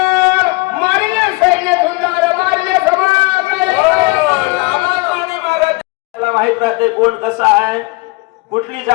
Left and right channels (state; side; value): quieter; right; 24.5 dB